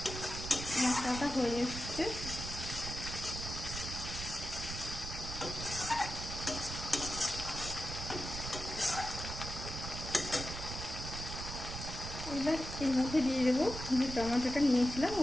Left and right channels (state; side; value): noise; right; rumble, 7 dB below the sound